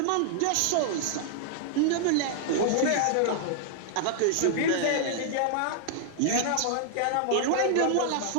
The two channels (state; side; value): different; both; correlation -0.01